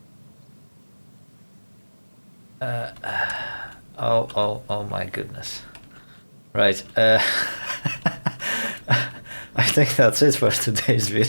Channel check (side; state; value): both; inverted; correlation -1.00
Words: Oh my goodness. Right, I think that's it for today's